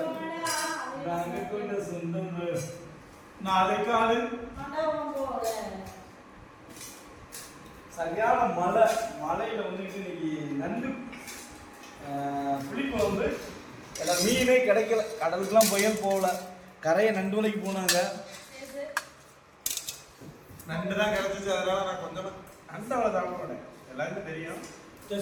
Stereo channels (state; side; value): identical; both; correlation 1.00